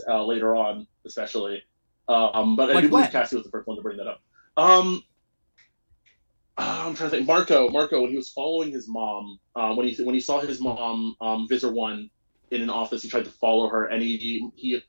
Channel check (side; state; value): both; inverted; correlation -1.00